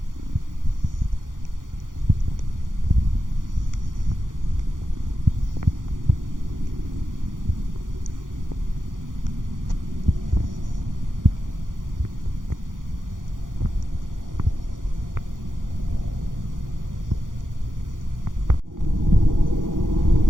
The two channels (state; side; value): late; left; 0.89 ms